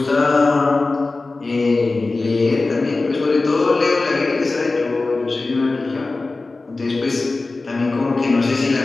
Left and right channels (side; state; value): right; quieter; 3.4 dB